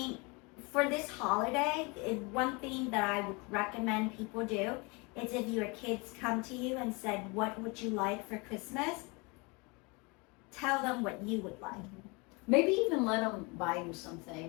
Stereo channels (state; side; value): quieter; right; 28.4 dB